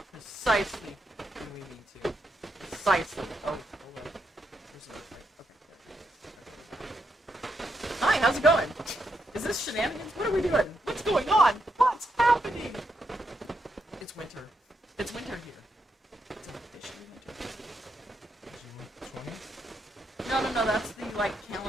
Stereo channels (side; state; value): both; normal; correlation 0.81